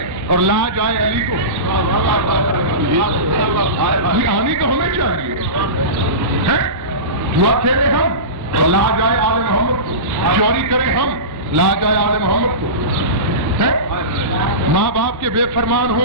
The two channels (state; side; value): late; left; 1.1 ms